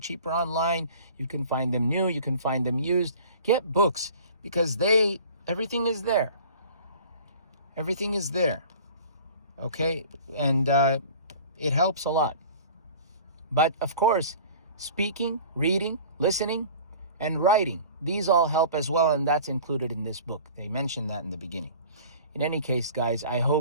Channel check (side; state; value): both; inverted; correlation -0.44